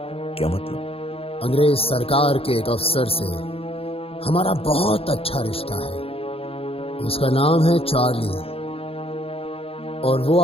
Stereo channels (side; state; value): right; late; 0.28 ms